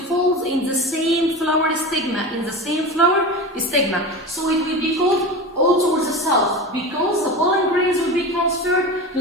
in the same flower stigma, So it will be called auto or the self, because the pollen grains will be transferred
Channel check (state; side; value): normal; both; correlation 0.28